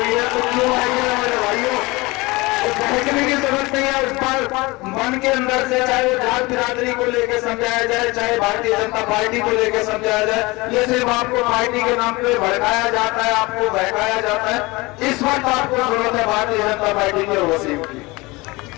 है। तो क्यों आइए मेरे भाइयों, बहकने की जरूरत नहीं है। उस पर मन के अंदर से चाहे वो जात बिरादरी को लेकर समझाया जाए, चाहे भारतीय जनता पार्टी को लेकर समझाया जाए, ये सिर्फ आपको पार्टी के नाम पे भड़काया जाता है, आपको बहकाया जाता है। इस वक्त आपको जरूरत है भारतीय जनता पार्टी के वसीम की।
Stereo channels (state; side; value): quieter; right; 23.2 dB